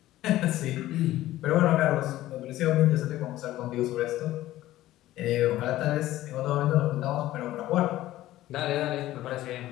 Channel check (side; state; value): right; quieter; 15.1 dB